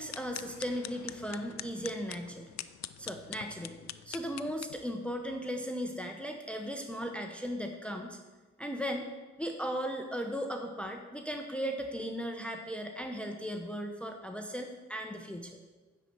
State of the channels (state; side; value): normal; both; correlation 0.66